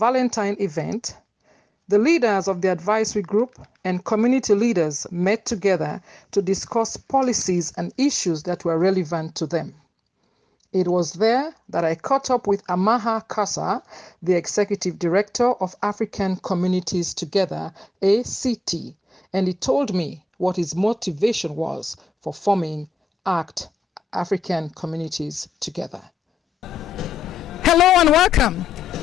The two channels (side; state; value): both; normal; correlation 0.89